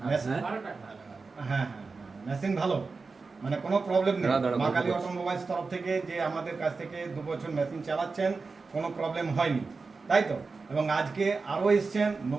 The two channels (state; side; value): quieter; left; 4.3 dB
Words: হ্যাঁ, মেশিন ভালো, মানে কোনো প্রবলেম নেই। মা কালী অটোমোবাইলস তরফ থেকে যে আমাদের কাছ থেকে 2 বছর মেশিন চালাচ্ছেন, কোনো প্রবলেম হয়নি, তাই তো? এবং আজকে আরও এসছেন,